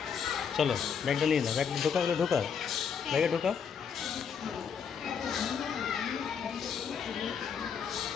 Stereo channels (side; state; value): right; quieter; 7.0 dB